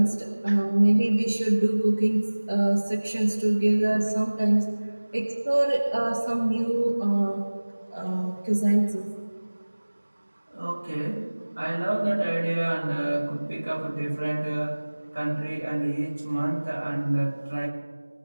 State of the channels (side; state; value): both; inverted; correlation -1.00